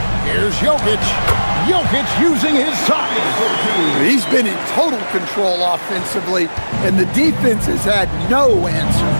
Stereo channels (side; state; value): both; inverted; correlation -1.00